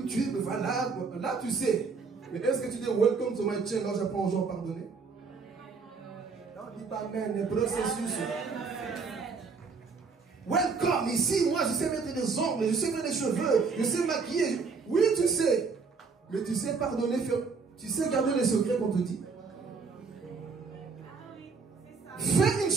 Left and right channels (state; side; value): quieter; left; 4.9 dB